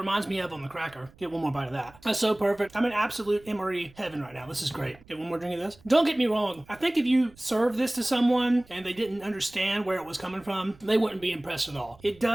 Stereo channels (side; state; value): right; noise; rumble, 25 dB below the sound